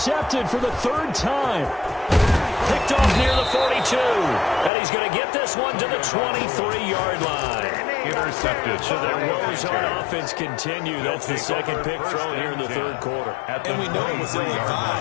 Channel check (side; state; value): right; drops out; at 4.7 s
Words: for the 3rd time. Picked off near the 42. And he's going to get this one to the 23-yard line. Intercepted. So their woes on offense continue. That's the 2nd pick thrown here in the 3rd quarter. And we know it was